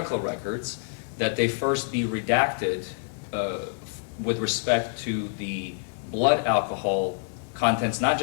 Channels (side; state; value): right; silent; digital silence